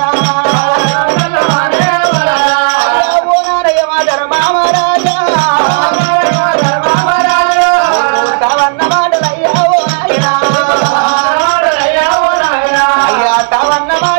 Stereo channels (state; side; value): silent; left; digital silence